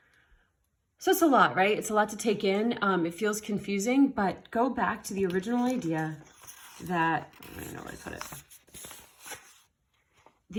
So it's a lot, right? It's a lot to take in. It feels confusing, but go back to the original idea that, I don't know where I put it.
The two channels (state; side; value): identical; both; correlation 1.00